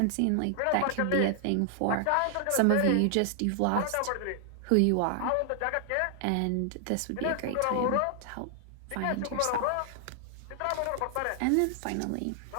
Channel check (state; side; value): different; both; correlation 0.00